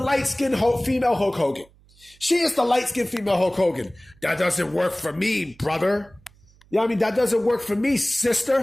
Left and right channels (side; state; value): right; noise; hum, 29 dB below the sound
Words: female Hulk Hogan. She is the light-skinned female Hulk Hogan. That doesn't work for me, brother. That doesn't work for me,